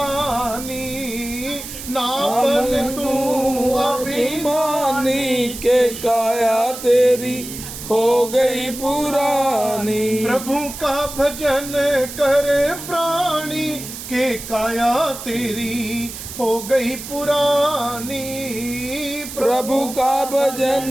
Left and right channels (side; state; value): right; noise; hiss, 10 dB below the sound